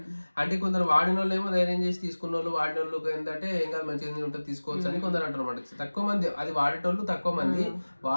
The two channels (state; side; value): inverted; both; correlation -1.00